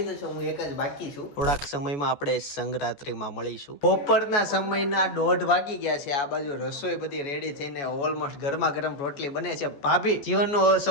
છે, હું એક જ બાકી છું. થોડાક સમયમાં આપણે સંગરાત્રીમાં મળીશું. બપોરના સમયના 1:30 વાગી ગયા છે. આ બાજુ રસોઈ બધી રેડી થઈને ઓલમોસ્ટ ગરમા ગરમ રોટલી બને છે. ભાભી જીવનનું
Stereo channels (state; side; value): late; right; 14 ms